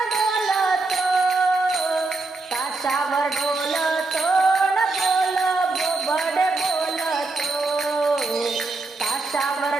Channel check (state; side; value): quieter; left; 3.5 dB